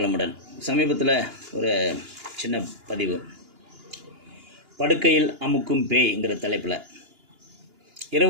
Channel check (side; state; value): left; late; 2.9 ms